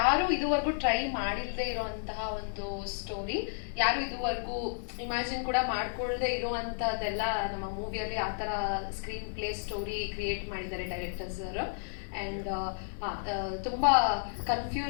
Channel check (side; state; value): right; silent; 56 dB below the other